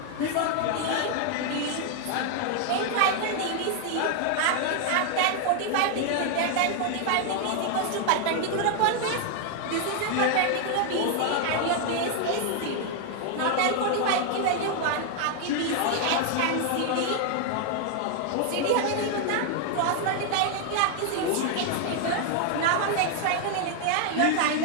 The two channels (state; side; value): different; both; correlation 0.00